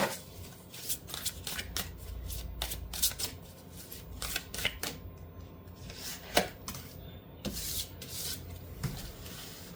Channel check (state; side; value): identical; both; correlation 1.00